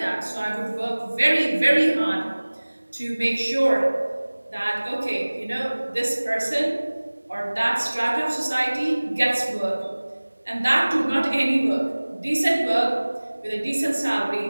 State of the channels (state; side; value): inverted; both; correlation -1.00